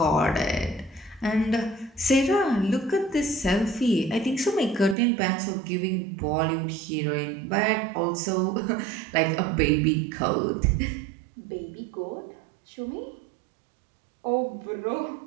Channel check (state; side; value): drops out; left; at 5.0 s